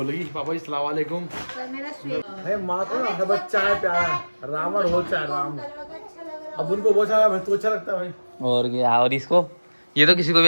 पापा अस्सलाम वालेकुम। पर मेरा स्वीट अरे माँ को ना बच्चा है प्यारा, राम और हो चाहे राम। अब उनको वो अच्छा तो अच्छा लगता है भाई। और क्या? और इसको ये तो किसी को भी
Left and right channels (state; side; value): inverted; both; correlation -1.00